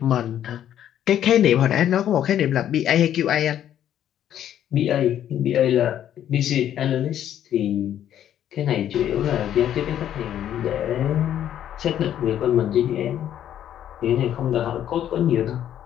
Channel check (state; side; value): quieter; right; 10.7 dB